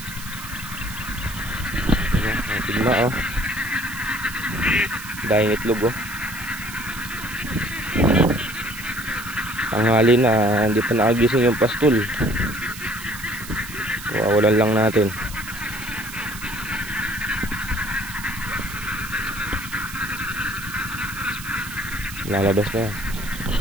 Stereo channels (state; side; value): noise; right; hiss, 12 dB below the sound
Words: Tigma oh. Dahil itlog oh. Tanghali na, hindi pa nakagising yung pastol. Wawalan lang natin. Lalabas na yan.